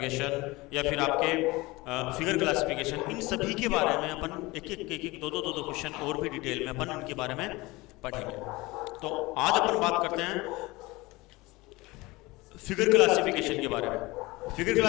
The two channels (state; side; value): quieter; right; 21.9 dB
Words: या फिर आपके फिगर क्लासिफिकेशन, इन सभी के बारे में अपन एक दो क्वेश्चन और भी डिटेल में अपन इनके बारे में पढ़ेंगे। तो आज अपन बात करते हैं फिगर क्लासिफिकेशन के बारे में। फिगर